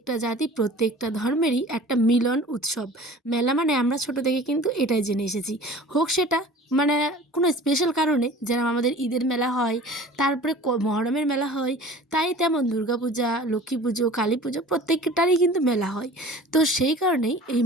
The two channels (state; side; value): normal; both; correlation 0.43